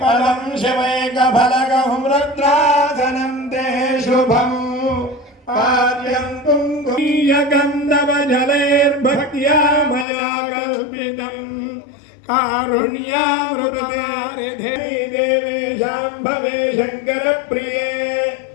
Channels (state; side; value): drops out; right; at 10.1 s